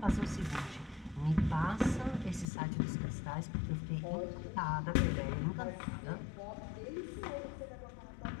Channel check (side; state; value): right; drops out; at 2.5 s